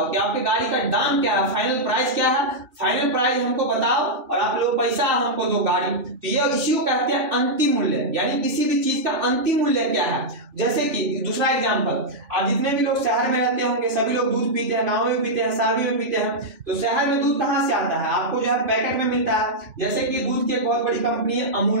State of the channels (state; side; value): late; left; 3.5 ms